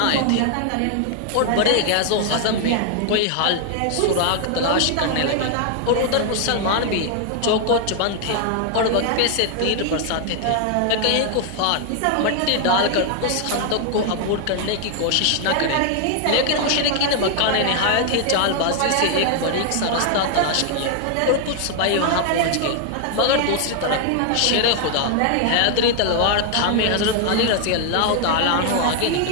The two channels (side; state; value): both; different; correlation 0.00